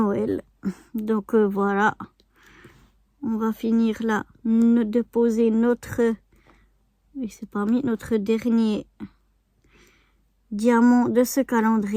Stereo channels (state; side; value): identical; both; correlation 1.00